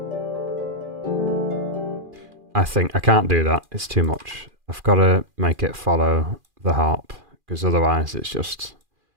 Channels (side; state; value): left; late; 2.4 ms